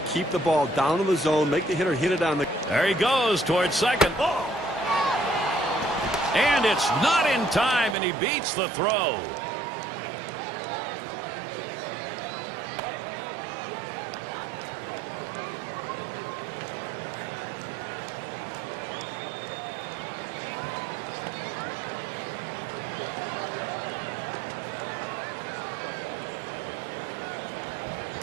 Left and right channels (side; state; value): left; drops out; at 8.0 s